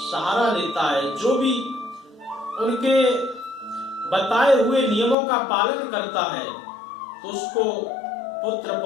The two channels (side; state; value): right; drops out; at 5.2 s